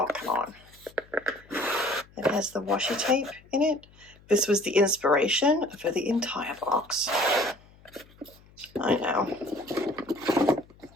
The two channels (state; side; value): noise; left; hum, 26 dB below the sound